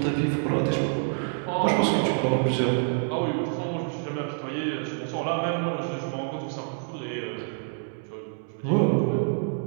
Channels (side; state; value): left; silent; 59 dB below the other